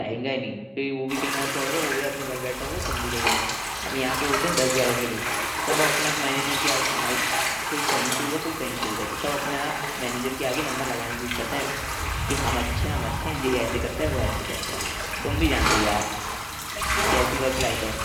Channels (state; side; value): identical; both; correlation 1.00